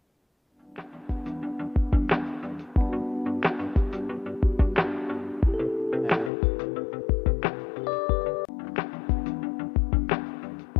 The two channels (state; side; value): drops out; right; at 6.3 s